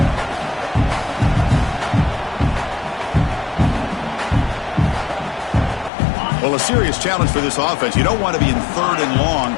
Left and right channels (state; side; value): drops out; right; at 5.9 s